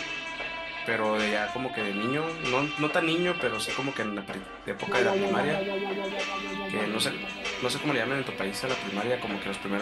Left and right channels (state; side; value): identical; both; correlation 1.00